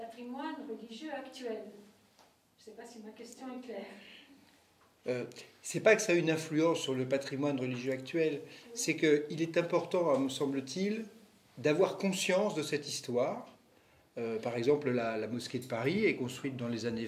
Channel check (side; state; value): both; identical; correlation 1.00